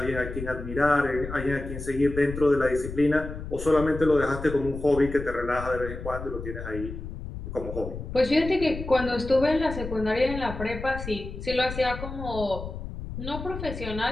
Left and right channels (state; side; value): noise; left; rumble, 9 dB below the sound